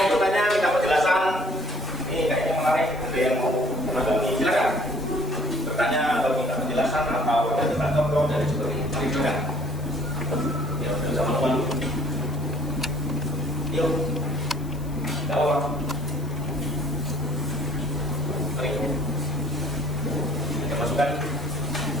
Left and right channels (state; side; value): noise; left; hiss, 24 dB below the sound